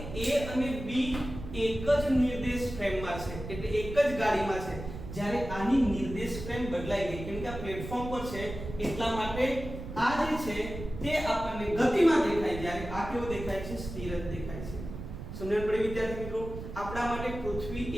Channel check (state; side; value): noise; right; rumble, 9 dB below the sound